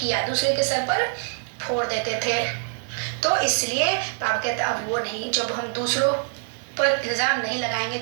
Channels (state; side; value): silent; left; 62 dB below the other